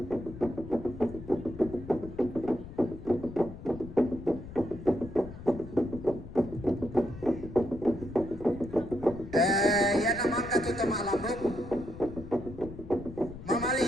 Yan naman katutama lambok.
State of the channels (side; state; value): left; noise; rumble, 13 dB below the sound